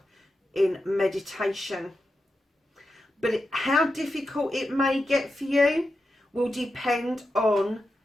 in meditation. But how difficult it may get for you will depend on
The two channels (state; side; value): normal; both; correlation 0.89